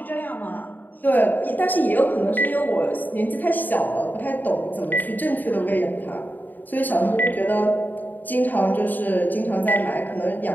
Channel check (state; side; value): late; right; 0.087 ms